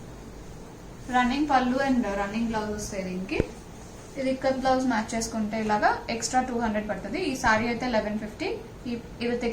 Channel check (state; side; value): identical; both; correlation 1.00